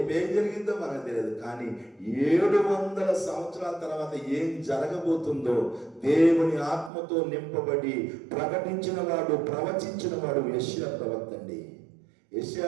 జరిగిందో మనకు తెలియదు. కానీ 700 సంవత్సరాల తర్వాత ఏం జరగబోతుందో దేవుని ఆత్మతో నింపబడి ప్రకటించిన వాడు, ప్రవచించిన వాడు యెషయా ప్రవక్త అండి.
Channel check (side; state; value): left; drops out; at 6.9 s